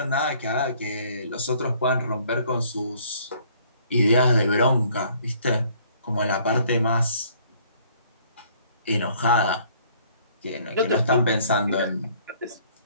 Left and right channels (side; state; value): both; inverted; correlation -0.59